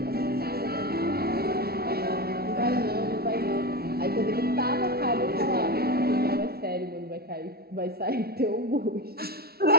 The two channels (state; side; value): late; left; 0.45 ms